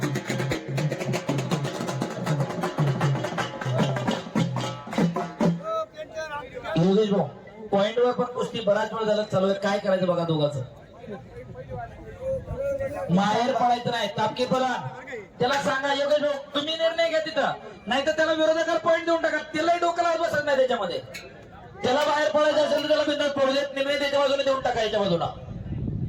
पॉइंटवर पण कुस्ती बराच वेळ झाला चालू आहे. काय करायचं बघा दोघांचं. माहेर पडायचं नाही. तापकी बोला त्याला सांगा योगेश भाऊ तुम्ही निर्णय घ्या तिथं, नाही तर त्याला विरोधकाला पॉइंट देऊन टाका. त्यालाही डोक्याला बसत नाही त्याच्यामध्ये. त्याला बाहेर पडायचं असेल तर त्याला बिंदास पडू देत. निर्णय त्याच्या बाजूने देऊन टाका याच्या बाजूला.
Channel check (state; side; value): identical; both; correlation 1.00